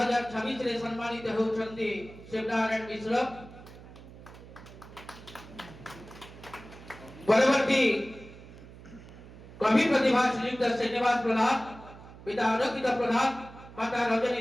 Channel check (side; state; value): right; noise; hum, 18 dB below the sound